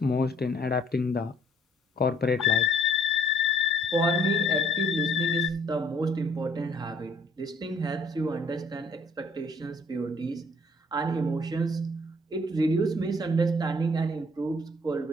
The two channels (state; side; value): normal; both; correlation 0.60